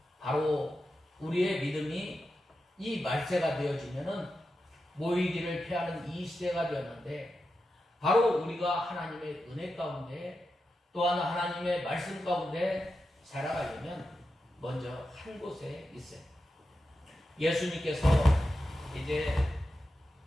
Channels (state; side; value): normal; both; correlation 0.90